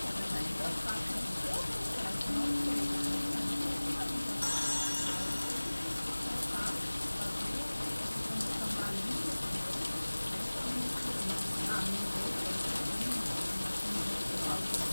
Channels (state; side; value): inverted; both; correlation -1.00